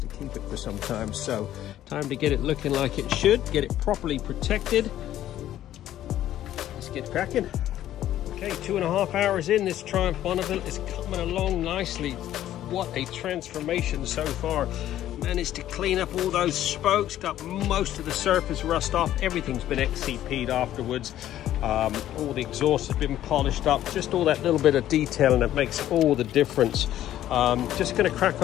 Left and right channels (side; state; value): right; quieter; 12.5 dB